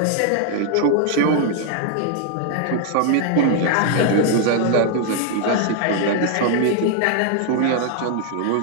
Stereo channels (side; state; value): both; different; correlation 0.00